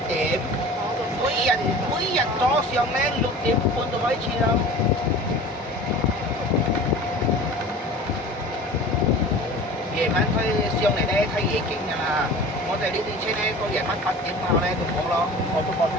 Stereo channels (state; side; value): normal; both; correlation 0.39